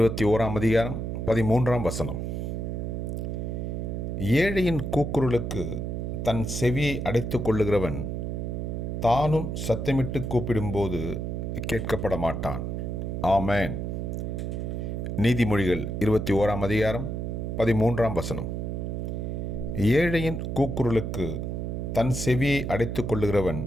அதிகாரம் 13 ஏழையின் கூக்குரலுக்கு தன் செவியை அடைத்து கொள்ளுகிறவன் தானும் சத்தமிட்டு கூப்பிடும்போது கேட்கப்பட மாட்டான். ஆமேன். நீதிமொழிகள் 21 அதிகாரம் 13 ஏழையின் கூக்குரலுக்கு தன் செவியை அடைத்து கொள்ளுகிறவன்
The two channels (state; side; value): noise; right; hum, 3 dB below the sound